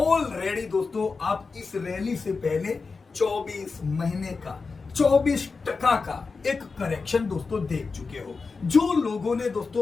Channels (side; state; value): right; quieter; 4.5 dB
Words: दोस्तों आप इस रैली से पहले 24 महीने का 24% का एक करेक्शन दोस्तों देख चुके हो। जो लोगों ने